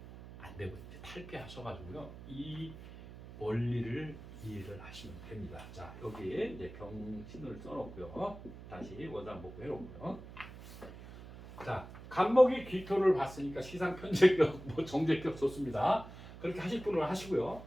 안 되고 이제 탈피하셔가지고요. 이 원리를 이해를 하시면 됩니다. 자, 여기에 이제 병신을 써놓고요. 다시 원상복구 해놓고요. 자, 간목이 기토를 봤으니까 시상 편제격, 뭐 정제격 좋습니다. 그렇게 하실 분을 하시고요.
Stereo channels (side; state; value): right; noise; hum, 14 dB below the sound